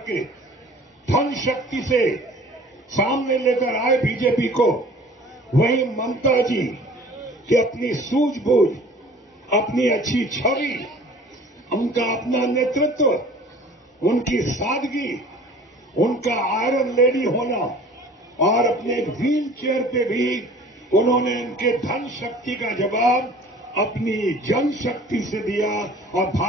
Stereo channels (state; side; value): normal; both; correlation 0.47